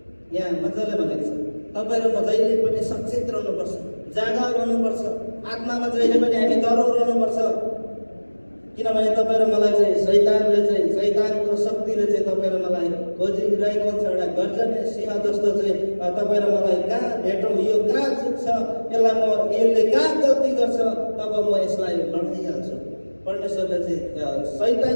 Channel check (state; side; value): inverted; both; correlation -1.00